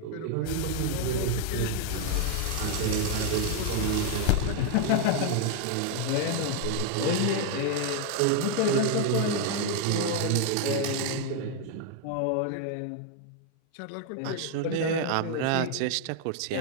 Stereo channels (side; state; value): both; different; correlation 0.01